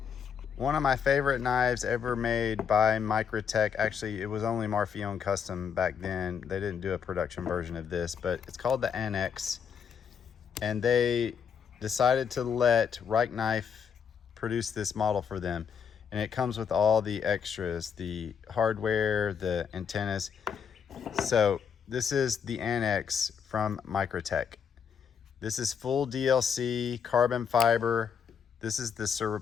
one of my favorite knives ever made by Microtech. Actually, it was only Marfione Custom back then. They didn't do a production version of this, but it's called the Anax. And they decided to let Rike Knife produce this model for them. And it comes with all the extras, the hardware, the antennas. So this is the Anax from Microtech. This is full DLC, carbon fiber. This is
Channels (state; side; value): quieter; right; 7.1 dB